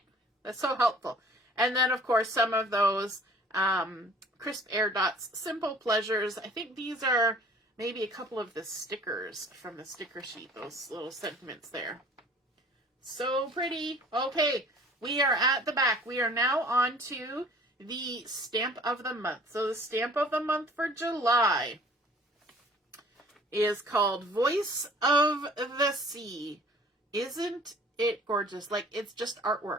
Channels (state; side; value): normal; both; correlation 0.51